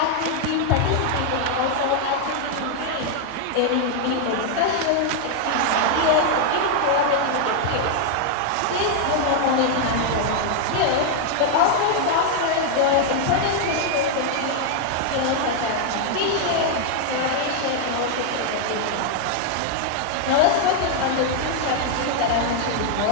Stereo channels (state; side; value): different; both; correlation 0.00